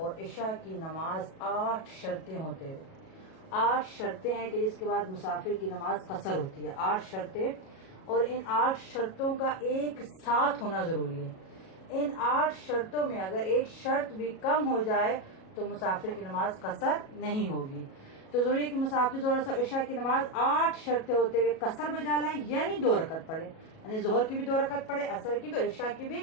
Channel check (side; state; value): right; late; 37 ms